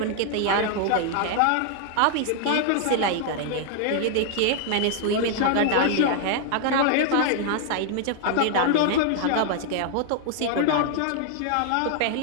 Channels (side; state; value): both; different; correlation 0.00